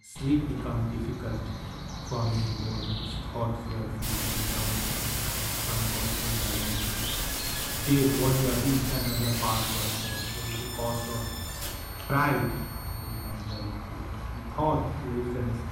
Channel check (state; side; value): identical; both; correlation 1.00